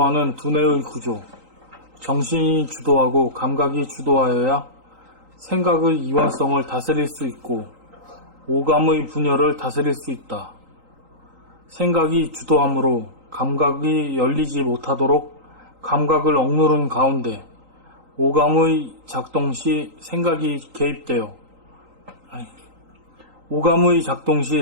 두뇌의 구조. 정신이 주도하고 감각이 주도하여야 생각의 이원성을 다스릴 수 있고 오감의 분열을 다스릴 수 있다. 생각이 주도함으로 감각이 열리지 못하도록 감각을 억누른 가운데 오감의 작동 시 생각이 개입하여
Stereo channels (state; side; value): late; left; 3.8 ms